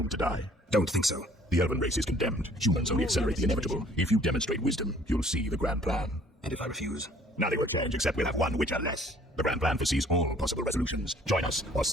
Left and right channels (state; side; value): normal; both; correlation 0.56